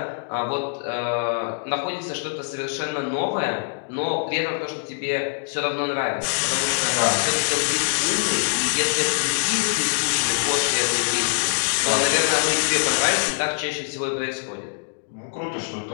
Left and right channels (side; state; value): right; silent; digital silence